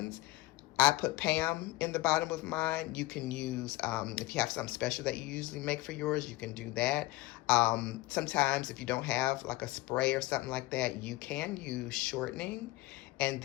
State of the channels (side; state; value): right; quieter; 19.2 dB